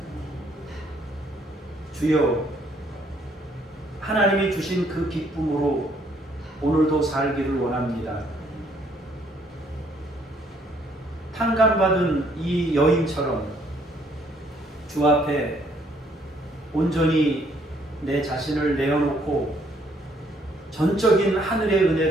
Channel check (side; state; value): both; normal; correlation 0.66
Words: 주여, 하나님이 주신 그 기쁨으로 오늘도 살기를 원합니다. 탕감받은 이 여인처럼 주 앞에 온전히 내 자신을 내어놓고 전적인 하늘의